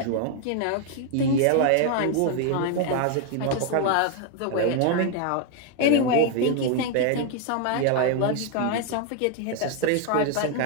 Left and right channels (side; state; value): both; different; correlation 0.00